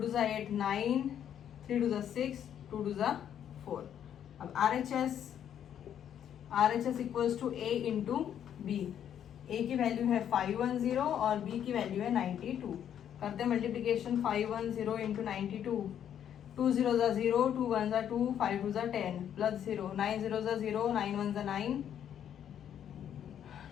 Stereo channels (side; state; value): right; quieter; 9.6 dB